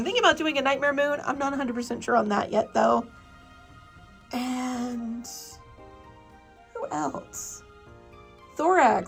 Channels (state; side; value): identical; both; correlation 1.00